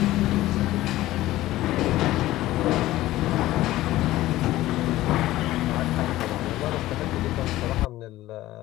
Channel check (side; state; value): right; quieter; 16.0 dB